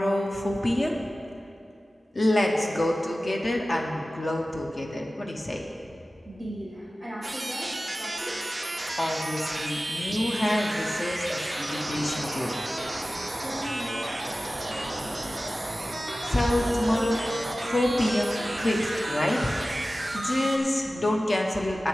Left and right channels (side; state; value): both; normal; correlation 0.96